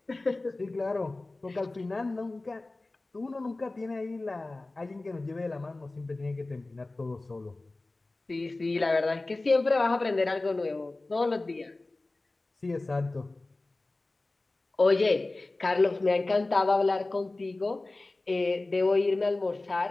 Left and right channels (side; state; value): right; quieter; 3.1 dB